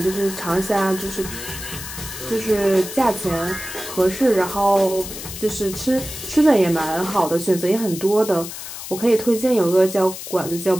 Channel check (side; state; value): left; noise; hiss, 10 dB below the sound